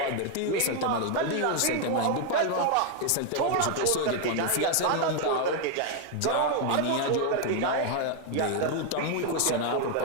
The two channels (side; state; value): both; different; correlation 0.01